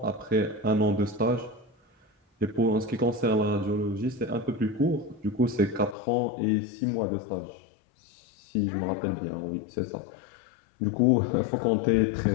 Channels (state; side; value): drops out; right; at 6.0 s